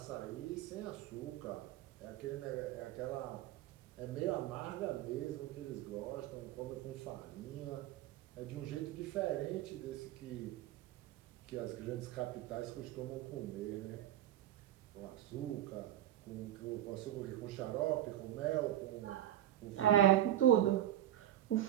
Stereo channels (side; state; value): left; quieter; 12.5 dB